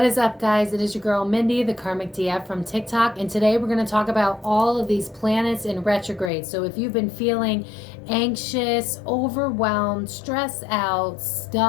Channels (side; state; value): right; drops out; at 6.3 s